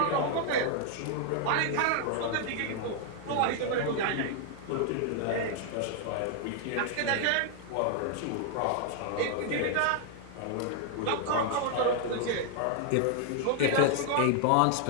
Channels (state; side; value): different; both; correlation 0.00